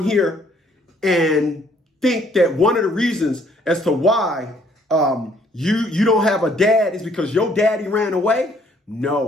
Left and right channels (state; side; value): normal; both; correlation 0.63